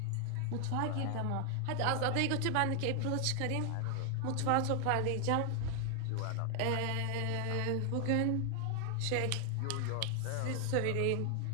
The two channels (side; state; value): both; different; correlation 0.00